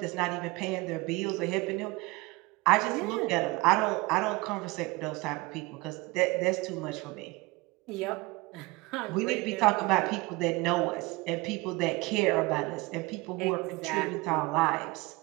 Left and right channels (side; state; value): left; quieter; 23.3 dB